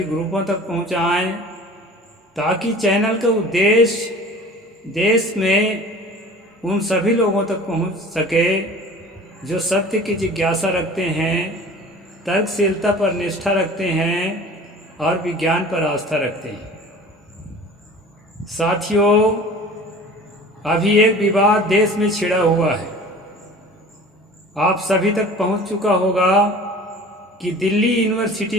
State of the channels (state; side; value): normal; both; correlation 0.43